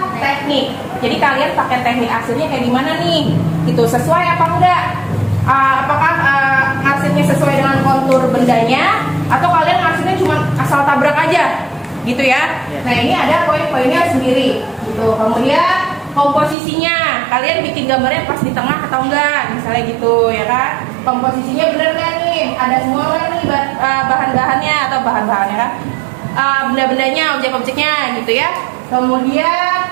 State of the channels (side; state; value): left; drops out; at 16.6 s